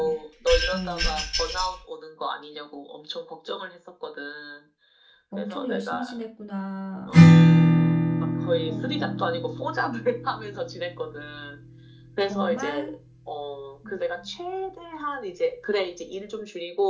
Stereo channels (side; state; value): both; identical; correlation 1.00